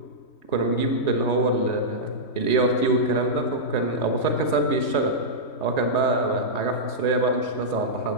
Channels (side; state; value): right; late; 3.3 ms